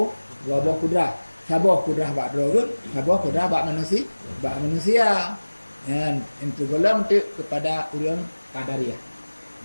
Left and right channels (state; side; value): inverted; both; correlation -1.00